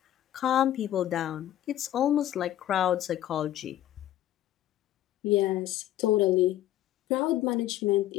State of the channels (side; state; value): right; quieter; 12.9 dB